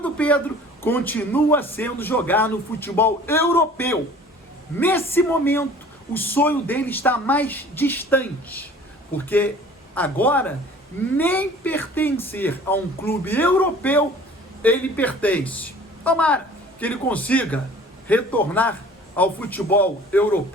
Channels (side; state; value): both; normal; correlation 0.48